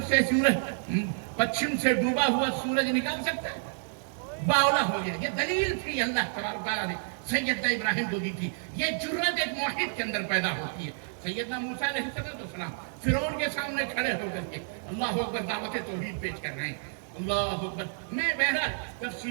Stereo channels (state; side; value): silent; left; digital silence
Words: سے سورج پچھم سے ڈوبا ہوا سورج نکال سکتا ہے؟ باولا ہو گیا۔ یہ دلیل تھی اللہ تبارک تعالیٰ نے سیدنا ابراہیم کو دی تھی۔ یہ جرت ایک موحد کے اندر پیدا ہوتی ہے۔ سیدنا موسیٰ علیہ السلام فرعون کے سامنے کھڑے ہو کر کے اللہ اکبر دعوت توحید پیش کر رہے ہیں، اللہ اکبر. میں بہرحال